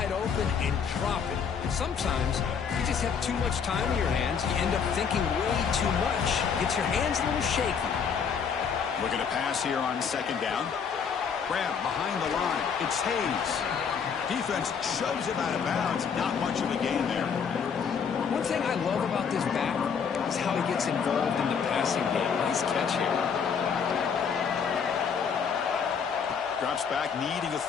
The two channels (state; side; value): quieter; right; 6.6 dB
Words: open and drop it. Sometimes you just have too much time in your hands. You end up thinking way too much. Gets your hands a little shaky. Looking to pass here on second down. Grab behind the line. It's Hayes. Defense shoves him out of bounds. Not much of a gain there. One thing I love about this back is how he gets involved in the passing game. Nice catch here. Drops back, needing a